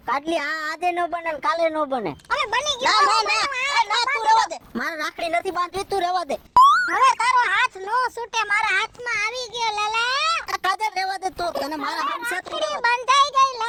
કાટલી આ આજે ન બને ને કાલે ન બને. હવે બની ગયો ના તું રહેવા દે. મારે રાખડી નથી બાંધવી, તું રહેવા દે. હવે તારો હાથ નો છૂટે મારા હાથમાં આવી ગયો લાલા કાજલ રહેવા દે તું, તને મારા હાથ સાથે રાખડી બંધાઈ ગઈ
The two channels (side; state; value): both; identical; correlation 1.00